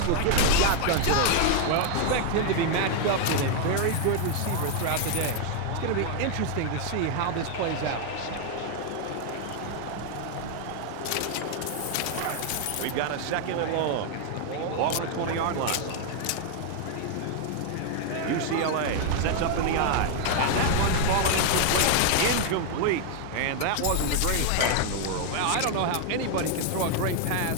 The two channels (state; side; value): different; both; correlation 0.00